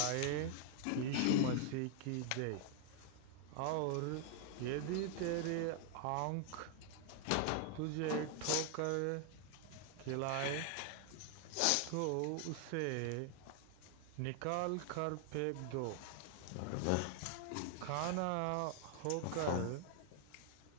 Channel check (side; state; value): both; different; correlation 0.00